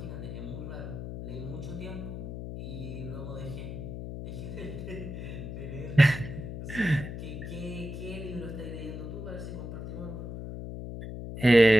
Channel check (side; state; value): left; noise; hum, 7 dB below the sound